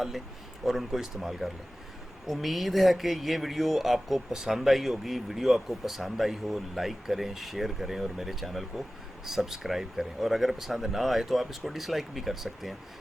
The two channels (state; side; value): normal; both; correlation 0.96